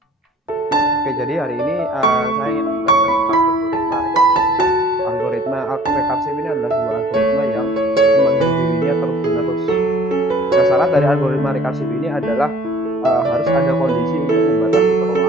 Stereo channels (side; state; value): both; normal; correlation 0.53